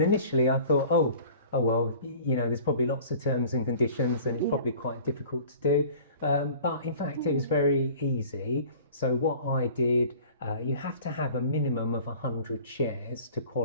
initially I thought, oh well, you know, there's probably lots of terms and conditions and it's probably quite difficult to do. But in fact, it was very easy. So what I did, you have to have a minimum of 100 shares to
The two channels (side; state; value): both; inverted; correlation -0.46